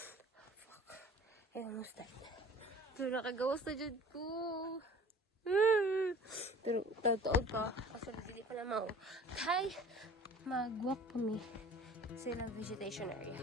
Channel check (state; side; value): normal; both; correlation 0.45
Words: Fuck. I almost died. Pero nakagawas na dyan ko. Pero tataod pa. Kasi hindi pa na mao. Kay mag-walk kami sa ilang vegetation area.